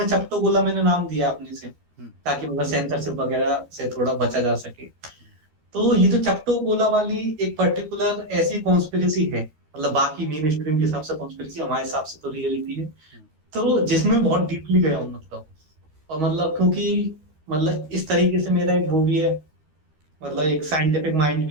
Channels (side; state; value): left; late; 13 ms